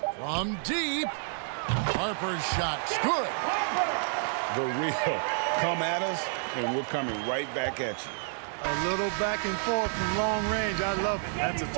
From deep, Harper's shot's good. The real come at us, and we're coming right back at you. A little back and forth from long range. I love it. That's a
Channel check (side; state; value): left; silent; 58 dB below the other